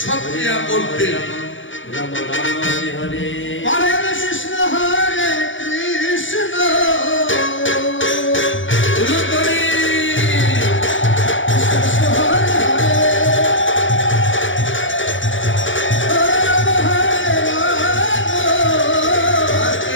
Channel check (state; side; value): late; right; 0.56 ms